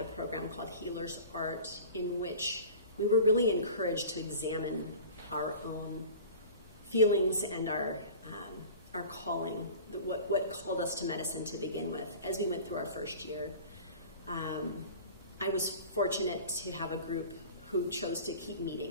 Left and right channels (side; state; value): both; inverted; correlation -0.40